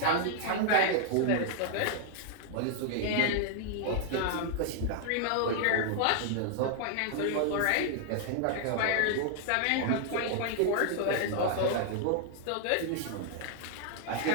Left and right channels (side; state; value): both; different; correlation 0.00